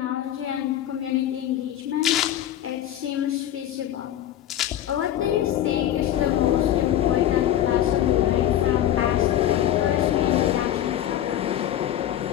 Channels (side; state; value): right; quieter; 11.8 dB